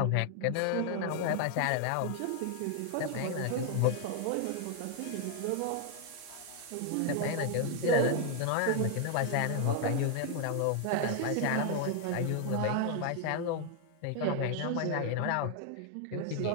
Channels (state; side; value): different; both; correlation 0.00